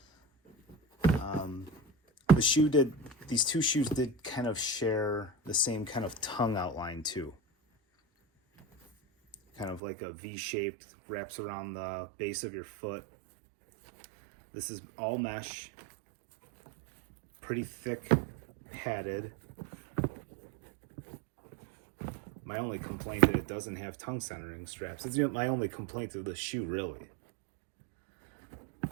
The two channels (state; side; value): drops out; left; at 9.8 s